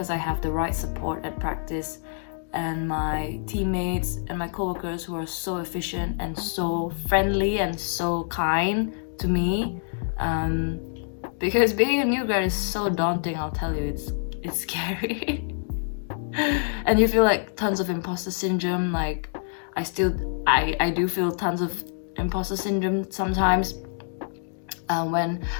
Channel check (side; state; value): right; silent; digital silence